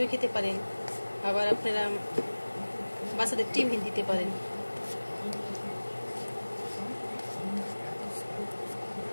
খেতে পারেন, আবার আপনারা বাচ্চাদের টিফিন দিতে পারেন।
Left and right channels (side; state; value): both; inverted; correlation -1.00